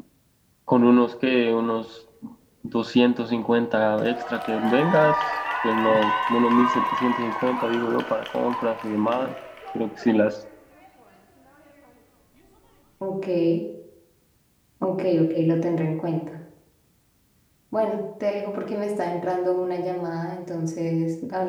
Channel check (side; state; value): both; identical; correlation 1.00